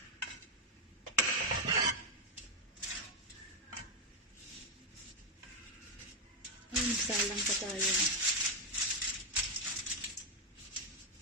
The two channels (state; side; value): normal; both; correlation 0.03